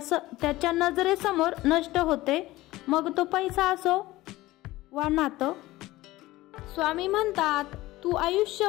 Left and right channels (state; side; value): quieter; right; 17.9 dB